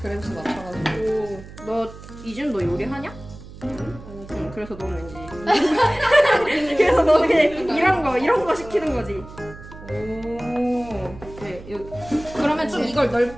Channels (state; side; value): noise; right; hum, 16 dB below the sound